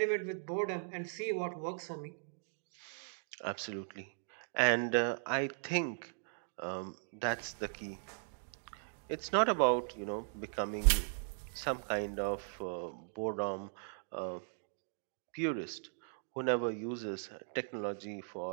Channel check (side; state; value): left; silent; digital silence